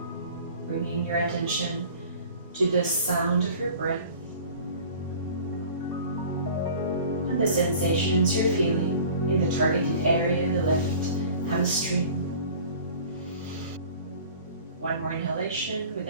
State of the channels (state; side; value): inverted; both; correlation -0.45